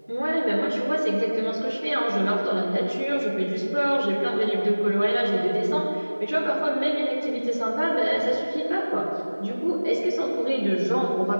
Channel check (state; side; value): inverted; both; correlation -1.00